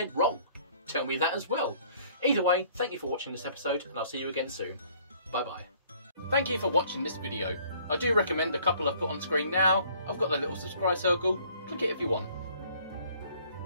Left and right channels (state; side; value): inverted; both; correlation -0.58